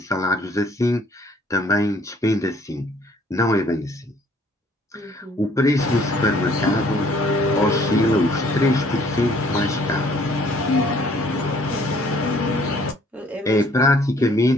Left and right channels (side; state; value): both; normal; correlation 0.59